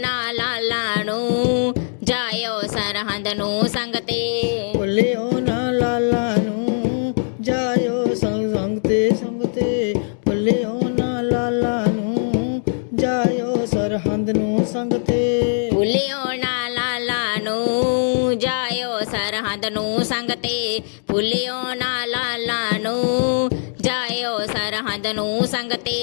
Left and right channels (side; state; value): right; silent; digital silence